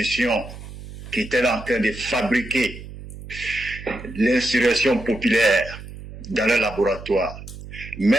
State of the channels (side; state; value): right; noise; hum, 13 dB below the sound